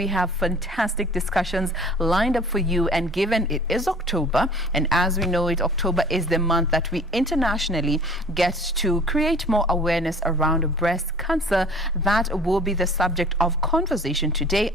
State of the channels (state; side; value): normal; both; correlation 0.48